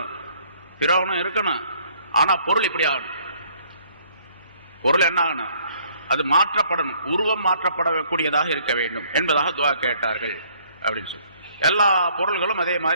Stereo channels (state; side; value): inverted; both; correlation -0.61